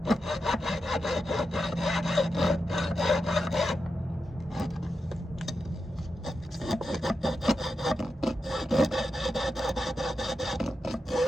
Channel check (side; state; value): both; normal; correlation 0.89